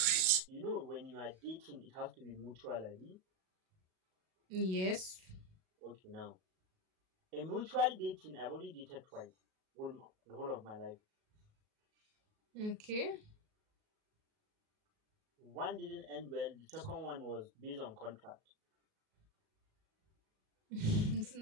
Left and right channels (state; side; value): late; left; 38 ms